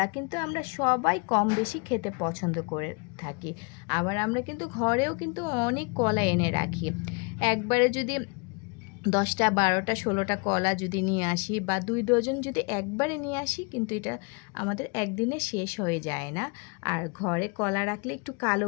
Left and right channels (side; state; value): right; quieter; 32.0 dB